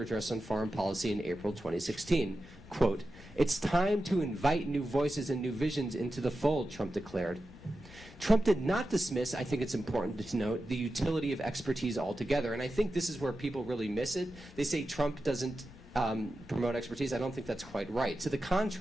address on foreign policy in April 2016. Quote, "It's time to invite new voices and new visions into the fold," Trump declared. Trump did not dismiss, I think it's important to note, the utility of expertise altogether, and I think this is where people really miss it. They say Trump doesn't promote expertise, I don't think that's quite right. To the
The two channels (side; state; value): both; normal; correlation 0.92